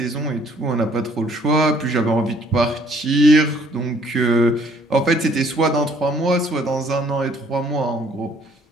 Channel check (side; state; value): both; normal; correlation 0.61